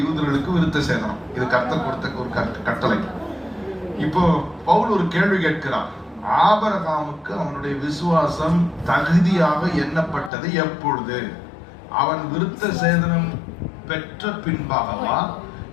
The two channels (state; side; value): drops out; right; at 10.3 s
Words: யூதர்களுக்கு விருத்த சேதனம். இது கர்த்தர் கொடுத்த ஒரு கட்டளை. இப்போ பவுல் ஒரு கேள்வி கேட்கிறார். ஆபிரகாமுக்கு அவனுடைய விசுவாசம் தகுதியாக எண்ணப்பட்டது எப்பொழுது? அவன் விருத்த சேதனம் பெற்ற பின்பாகவா,